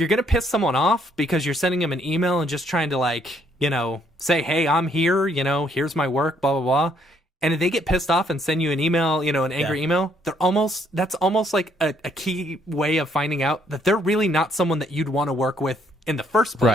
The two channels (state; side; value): normal; both; correlation 0.68